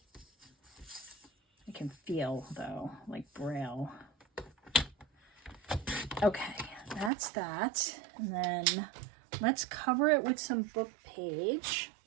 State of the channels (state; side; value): drops out; left; at 7.1 s